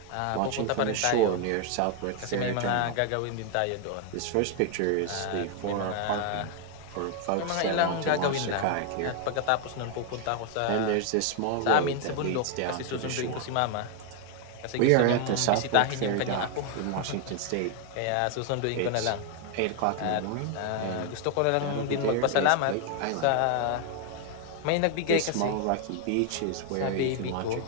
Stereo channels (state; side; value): different; both; correlation 0.00